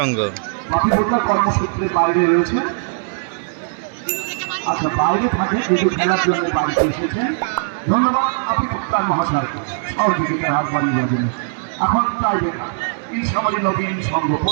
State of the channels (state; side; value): silent; left; 66 dB below the other